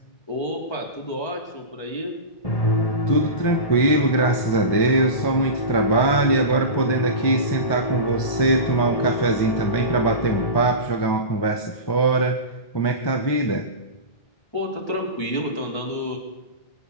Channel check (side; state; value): right; late; 1.2 ms